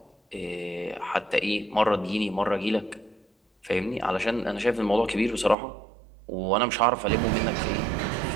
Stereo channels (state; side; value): drops out; left; at 5.6 s